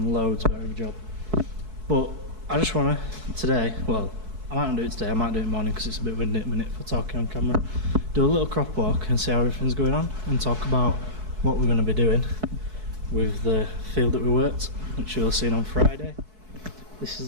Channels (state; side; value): late; left; 4.6 ms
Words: loads better of a job. But I just want to, today, well, I might not do it today, I might do it in the morning because it's a bit windy at the minute for talking on camera. Do a little crop walk and see how everything's going on and talk about what we're going to be doing with the field that we worked, which you'll have seen on Friday. This is